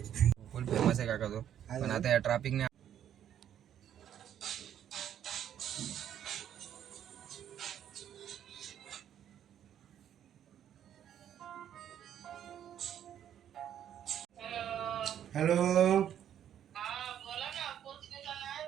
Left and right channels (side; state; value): left; quieter; 10.1 dB